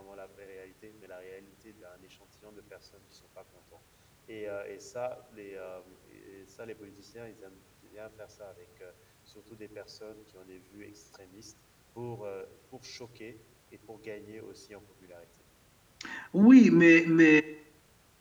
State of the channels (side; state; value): both; identical; correlation 1.00